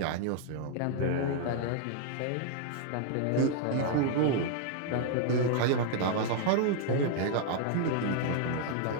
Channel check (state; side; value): different; both; correlation 0.00